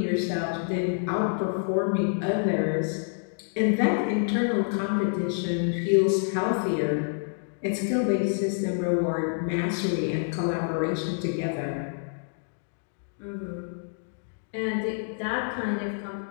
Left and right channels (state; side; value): silent; right; digital silence